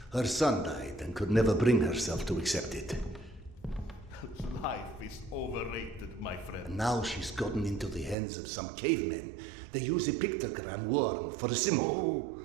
her son died and could never bring herself to accept it. Life is overrated, my friend. And now she's gotten into the hands of some cavemen. They use a pictogram worm for a symbol.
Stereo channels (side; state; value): left; drops out; at 8.2 s